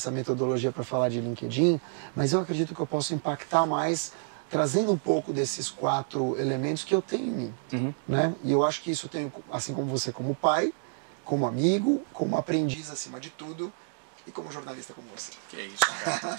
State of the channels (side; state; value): left; silent; digital silence